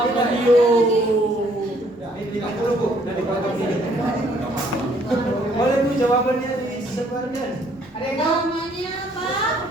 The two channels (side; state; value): both; normal; correlation 0.64